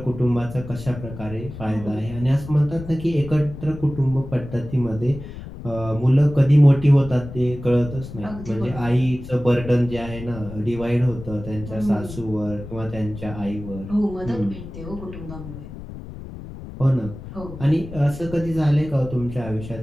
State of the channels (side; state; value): left; noise; rumble, 12 dB below the sound